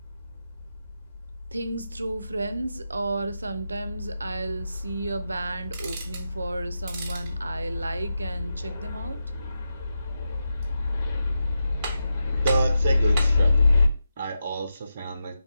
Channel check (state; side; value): inverted; both; correlation -0.88